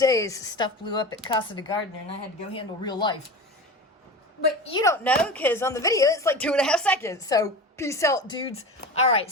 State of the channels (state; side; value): normal; both; correlation 0.31